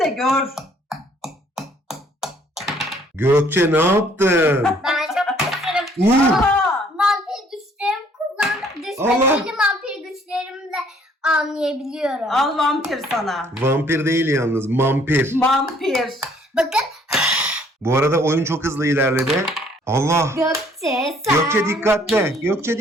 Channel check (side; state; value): both; normal; correlation 0.61